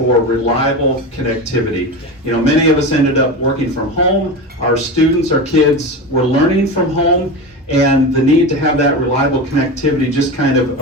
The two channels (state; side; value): normal; both; correlation 0.23